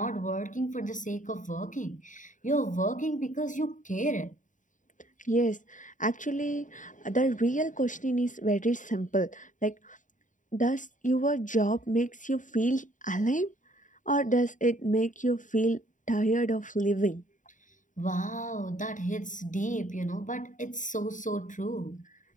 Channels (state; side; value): late; right; 0.37 ms